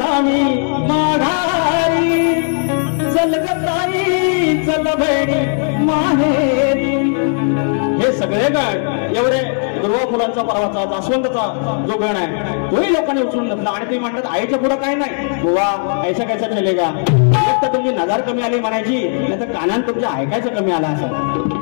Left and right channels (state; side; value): silent; right; 64 dB below the other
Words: मी माघारी. चल गताई चल बहिणी माहेरी. हे सगळे गण एवढे दुर्वा फुलांचा परवाचा जास्वंदचा जो गण आहे तोही लोकांनी उचलून घेतला. आणि ते म्हणतात आईच्या पुढं काय नाही बुवा, ऐसा कैसा चलेगा. एक तर तुमची नजर कमी आली म्हणायची, नाही तर कानात तुमच्या ऐकायचं कमी आला असं.